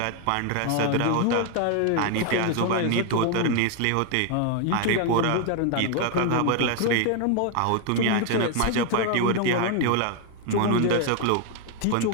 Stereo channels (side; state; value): both; different; correlation 0.00